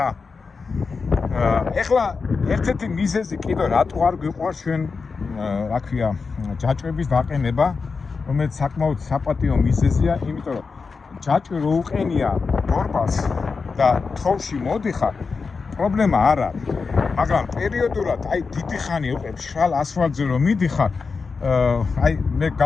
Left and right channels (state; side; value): quieter; right; 4.8 dB